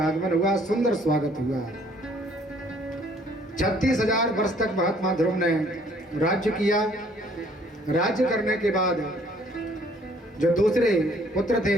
आगमन हुआ, सुंदर स्वागत हुआ। 36,000 वर्ष तक महात्मा ध्रुव ने राज्य किया। राज्य करने के बाद जो दूसरे पुत्र थे,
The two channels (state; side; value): normal; both; correlation 0.60